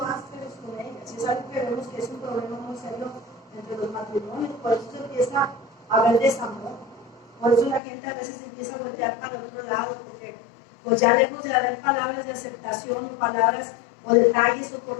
con ellas. Es algo que vemos que es un problema muy serio entre los matrimonios, por eso se empieza a haber desamor. Por eso la gente a veces empieza a voltear para el otro lado, porque pues ya lejos de haber palabras de aceptación o palabras o detalles o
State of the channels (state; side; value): drops out; right; at 7.8 s